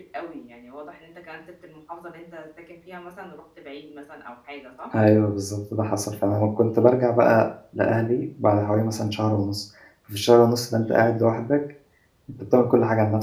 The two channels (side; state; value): both; identical; correlation 1.00